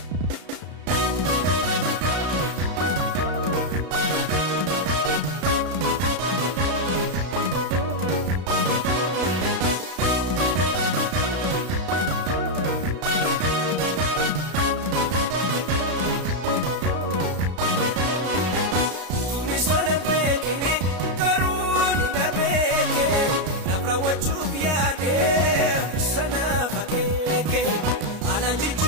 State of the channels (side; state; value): left; late; 33 ms